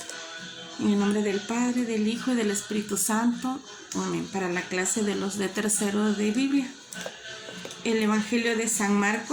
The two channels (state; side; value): identical; both; correlation 1.00